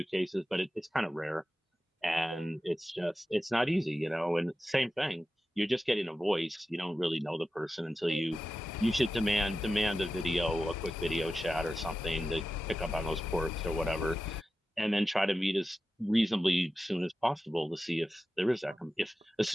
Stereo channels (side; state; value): both; normal; correlation 0.93